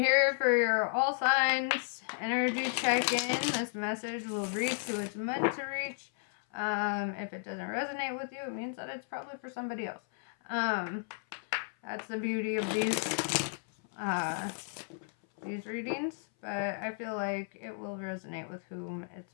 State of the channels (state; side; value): silent; right; 55 dB below the other